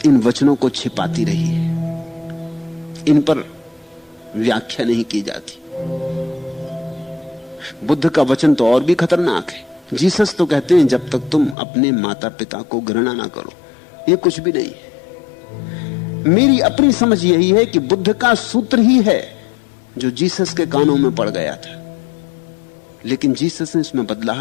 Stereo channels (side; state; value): right; drops out; at 11.6 s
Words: इन वचनों को छिपाती रही है, इन पर व्याख्या नहीं की जाती। बुद्ध का वचन तो और भी खतरनाक है। जीसस तो कहते हैं जब तक तुम अपने माता पिता को घृणा ना करो। ये कुछ भी नहीं है। मेरी अपनी समझ यही है कि बुद्ध का सूत्र ही है जो जीसस के कानों में पड़ गया था, लेकिन जीसस ने इसमें